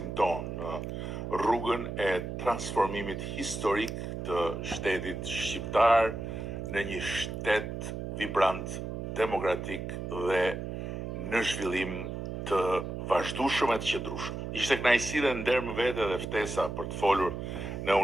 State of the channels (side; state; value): right; noise; hum, 5 dB below the sound